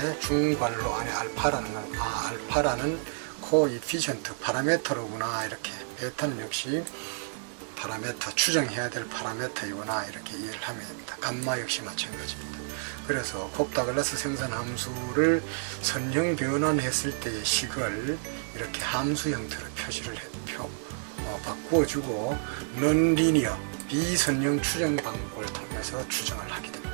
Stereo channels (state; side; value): silent; left; digital silence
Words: 중괄호 안에 알파라는 건 알파라는 코에피션트 파라메터로구나, 이렇게 베타는 역시 파라메터, 추정해야 될 파라메터이구나 이렇게 이해를 하면 됩니다. 감마 역시 마찬가지입니다. 그래서 콥 다글라스 생산 함수를 선형 변환했을 때의 식을 이렇게 함수 형태로 표시를 바꾸어주고, 넌리니어 비선형 추정 방법을 통해서 추정을 하게